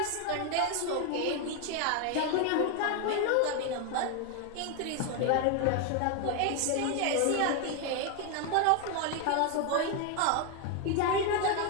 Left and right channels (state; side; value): different; both; correlation 0.01